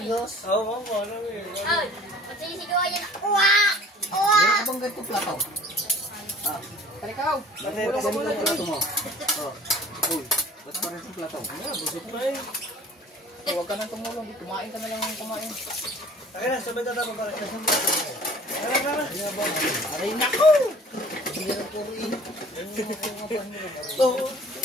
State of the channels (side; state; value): both; normal; correlation 0.49